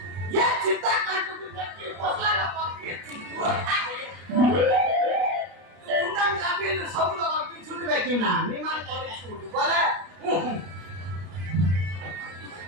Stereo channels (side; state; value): left; late; 33 ms